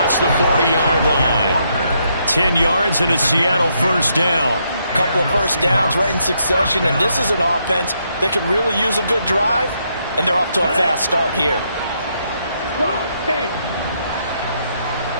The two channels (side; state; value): both; inverted; correlation -0.76